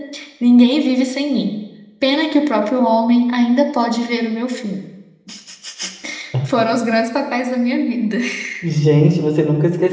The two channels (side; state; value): both; identical; correlation 1.00